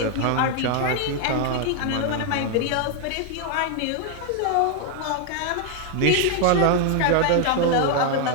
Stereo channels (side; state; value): both; different; correlation 0.00